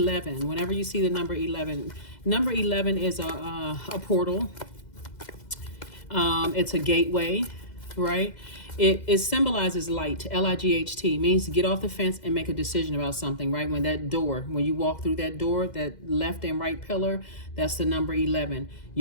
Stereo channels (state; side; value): late; right; 2.0 ms